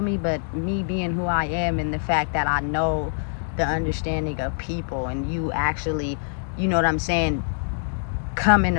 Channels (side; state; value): right; silent; 62 dB below the other